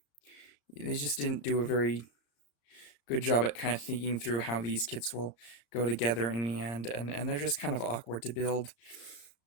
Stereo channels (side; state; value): right; late; 34 ms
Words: do a very good job at kind of thinking through how these kits will go together in the end, and they're just kind of awkward to build.